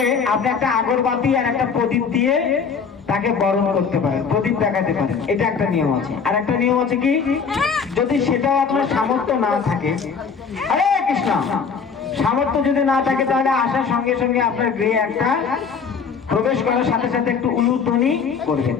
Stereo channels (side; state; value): right; quieter; 5.8 dB